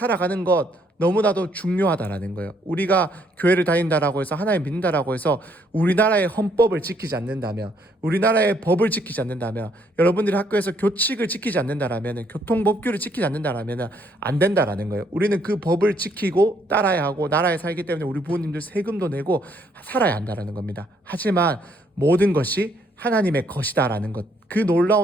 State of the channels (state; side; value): normal; both; correlation 0.69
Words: 것 너무나도 중요하다라는 거예요. 우리가 교회를 다닌다라고 해서 하나님 믿는다라고 해서 우리나라의 헌법을 지키지 않는다면, 우리나라의 법을 지키지 않는다면, 여러분들이 학교에서 교칙을 지키지 않는다라면, 교통법규를 지키지 않는다라면 안 된다라는 거예요. 우리는 그 법을 지키고 따라야 하고 나라에 살기 때문에 우리 부모님들 세금도 내고 살아야 한다라는 겁니다. 하지만 모든 것이 하나님의 것이다라는 것, 그